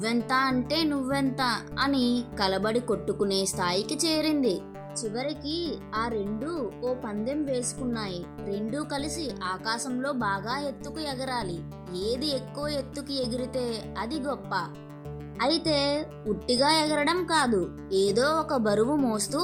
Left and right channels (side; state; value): both; identical; correlation 1.00